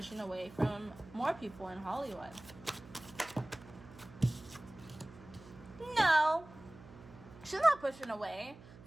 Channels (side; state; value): right; noise; hum, 19 dB below the sound